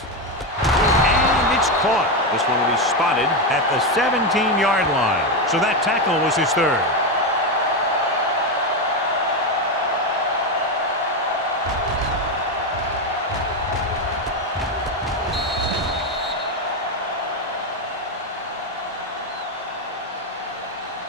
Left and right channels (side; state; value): both; normal; correlation 0.10